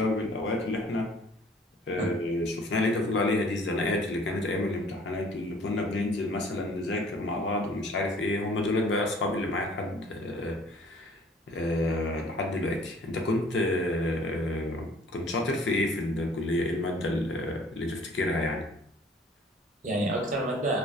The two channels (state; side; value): normal; both; correlation 0.54